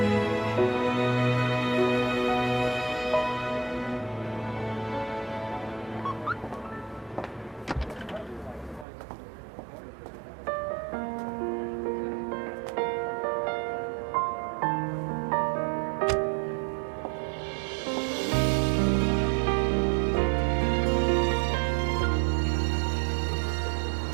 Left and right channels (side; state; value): left; drops out; at 8.8 s